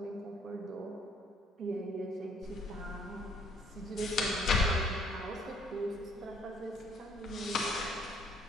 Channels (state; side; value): normal; both; correlation 0.62